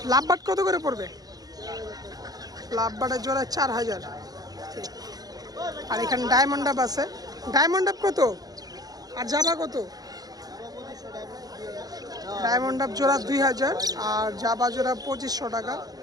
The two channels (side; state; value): left; late; 0.18 ms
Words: কত করে পড়বে? লাভবাটের জোড়া 4000। আর এখানে ডায়মন্ড আপ আছে। ডায়মন্ড আপ কত আর জাবা কত? ডায়মন্ড আপ জোড়া 2000 আর জাবা জোড়া 2500 টাকা।